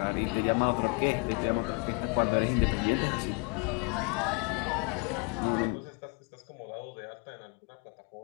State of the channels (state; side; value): quieter; right; 32.4 dB